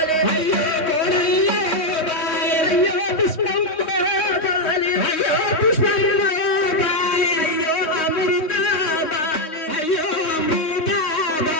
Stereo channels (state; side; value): late; right; 3.2 ms